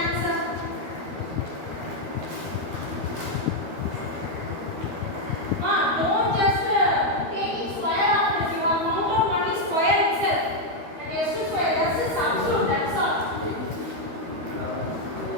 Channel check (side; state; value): left; late; 13 ms